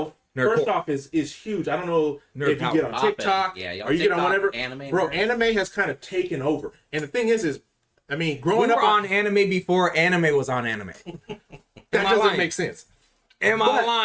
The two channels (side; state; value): both; identical; correlation 1.00